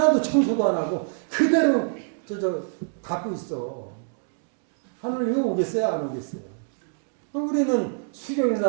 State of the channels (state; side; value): silent; left; 61 dB below the other